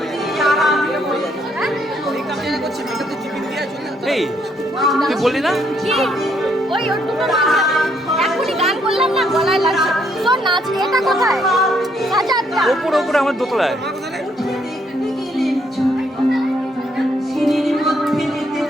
এই তুই বললি না কি ওই ওর দুটো এখনই গান করলাম না গলায় লাগছে শোন নাচ এটা কোথায় সাজাদটা ওপরে ওপরে আমার দোতলায়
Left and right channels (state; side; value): normal; both; correlation 0.71